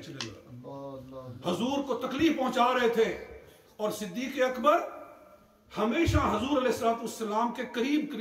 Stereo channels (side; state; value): both; identical; correlation 1.00